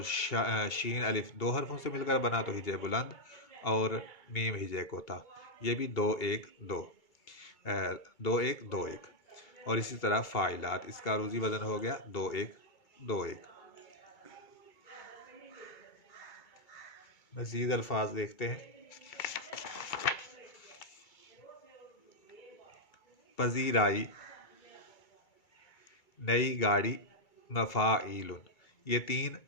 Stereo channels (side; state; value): right; late; 2.3 ms